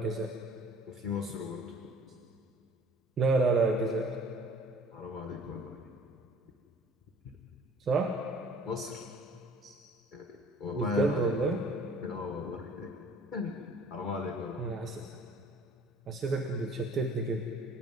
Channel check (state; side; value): normal; both; correlation 0.51